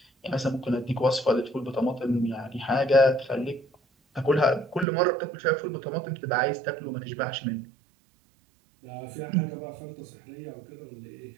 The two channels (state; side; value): drops out; left; at 4.9 s